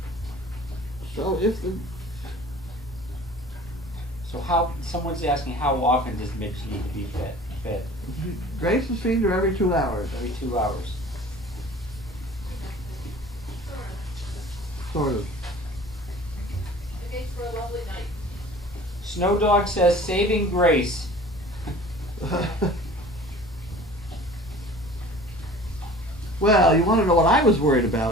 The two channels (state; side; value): normal; both; correlation 0.45